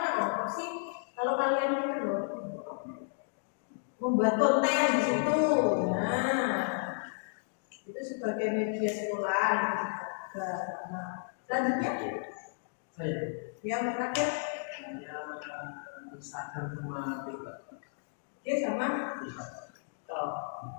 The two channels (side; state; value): right; silent; digital silence